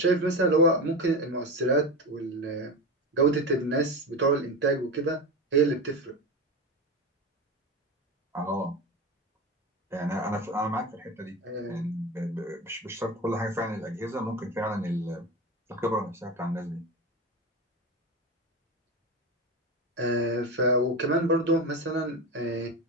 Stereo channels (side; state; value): both; normal; correlation 0.22